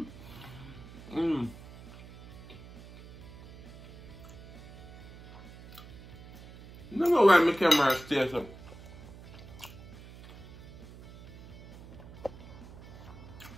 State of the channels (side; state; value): right; noise; hum, 16 dB below the sound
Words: don't know why my camera stays up.